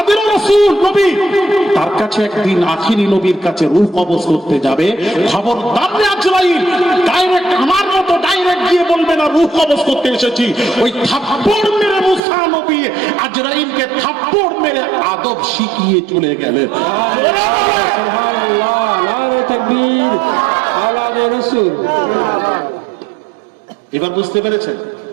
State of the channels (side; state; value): left; drops out; at 12.2 s